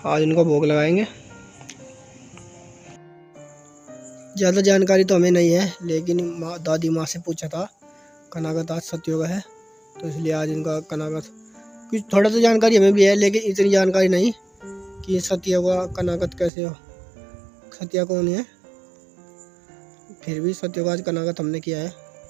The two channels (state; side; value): drops out; left; at 16.5 s